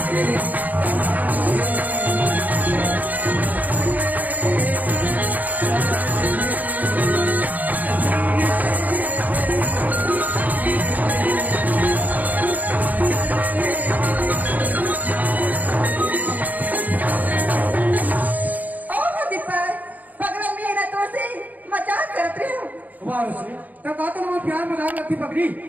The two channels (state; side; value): late; left; 0.080 ms